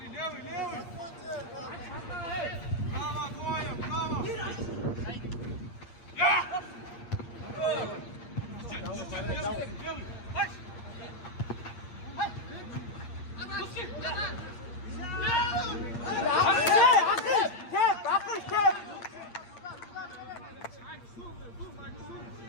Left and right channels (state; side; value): late; right; 8.6 ms